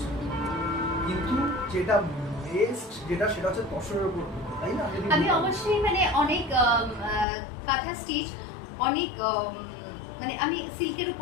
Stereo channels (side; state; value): right; drops out; at 7.2 s